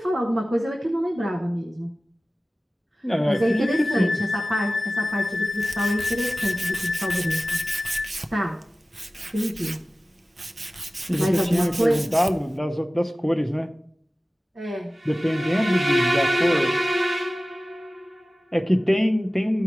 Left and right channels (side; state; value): both; normal; correlation 0.96